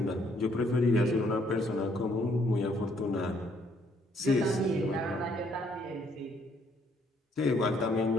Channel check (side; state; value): both; normal; correlation 0.67